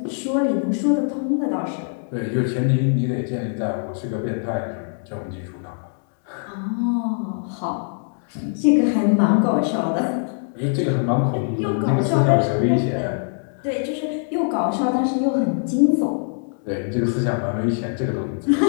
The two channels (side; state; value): right; silent; 64 dB below the other